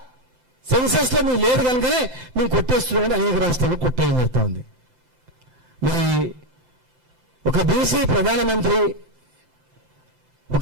సెన్సస్ లో మీరు లేదు కనుకనే మేము కొట్టేస్తున్నామని అనేక రాష్ట్రాల్లో కొట్టేయడం జరుగుతూ ఉంది. మరి ఒక బీసీ ప్రధానమంత్రి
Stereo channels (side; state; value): left; late; 5.8 ms